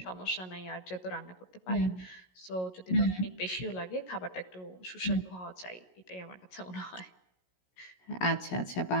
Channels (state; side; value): late; right; 16 ms